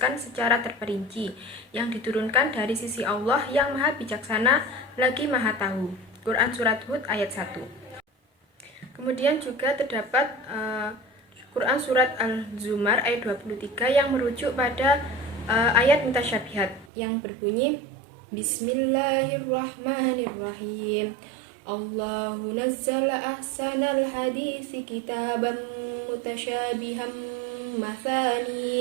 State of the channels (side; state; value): left; drops out; at 16.9 s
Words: secara terperinci, yang diturunkan dari sisi Allah yang maha bijaksana lagi maha tahu. Quran Surat Hud ayat 1. Kemudian juga terdapat Quran Surat Al-Zumar ayat 23 yang merujuk pada ayat mutasyabihat yang berbunyi Bismillahirrahmanirrahim. Allahu nazzala ahsanal hadisi kitaban mutasyabiham